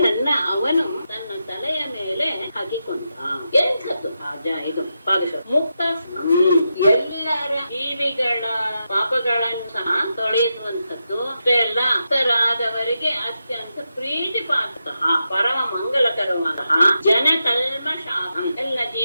ಅವನು ತನ್ನ ತಲೆಯ ಮೇಲೆ ಹಾಕಿಕೊಂಡ. ಎಂಥದ್ದು ಇದು ಪಾದಶ ಮುಕ್ತ ಎಲ್ಲರ ಜೀವಿಗಳ ಪಾಪಗಳನ್ನು ಸಹ ತೊಳೆಯುವಂಥದ್ದು ಅಷ್ಟೇ ಅಲ್ಲ, ಭಕ್ತರಾದವರಿಗೆ ಅತ್ಯಂತ ಪ್ರೀತಿ ಪಾತ್ರಃ ಪರಮ ಮಂಗಲಕರವಾದಂತಹ ಜನಕಲ್ಮಷಾಪಂ ಎಲ್ಲ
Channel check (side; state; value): both; inverted; correlation -0.86